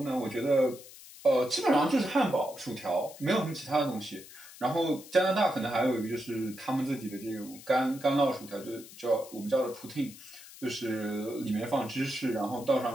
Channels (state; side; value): noise; left; hiss, 18 dB below the sound